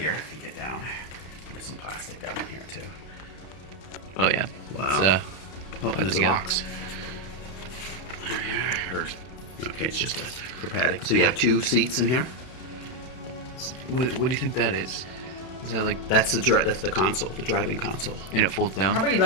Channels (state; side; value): late; right; 32 ms